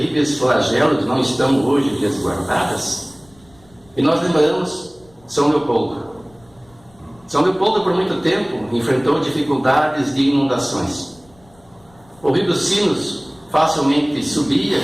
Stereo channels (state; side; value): noise; left; rumble, 29 dB below the sound